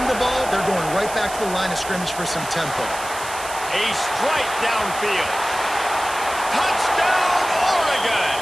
the ball, they're going right back to the line of scrimmage for some tempo. A strike downfield. Touchdown, Oregon!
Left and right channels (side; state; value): right; noise; hiss, 11 dB below the sound